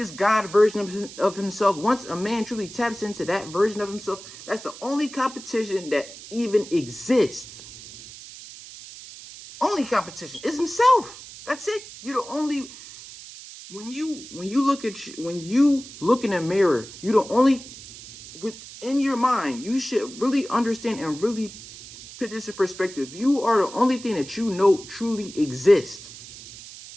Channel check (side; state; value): right; noise; hiss, 15 dB below the sound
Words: God version of himself. Once a man truly taps into that version of himself, that's the only competition that even exists. Only competition is himself. That's it. You're the only. When you look in a mirror, you the only, within your mind, you should really understand and really put this in perspective. You are the only thing that you know truly exists.